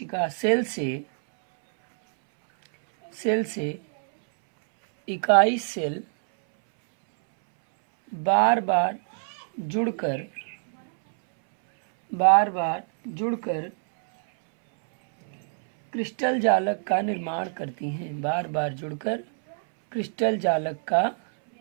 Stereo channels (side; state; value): left; silent; 62 dB below the other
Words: सेल से इकाई सेल बार बार जुड़कर क्रिस्टल जालक का निर्माण करती हैं। बार बार जुड़कर क्रिस्टल जालक का